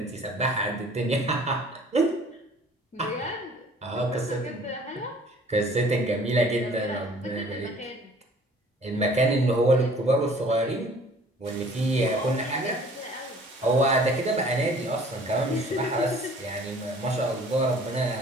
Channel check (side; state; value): both; normal; correlation 0.52